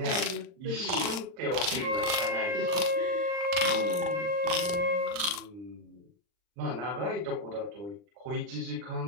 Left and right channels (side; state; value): left; late; 39 ms